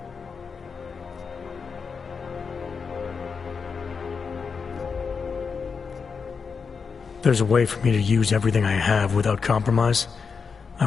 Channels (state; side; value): quieter; right; 5.5 dB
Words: There's a way for me to use everything I have without compromise. I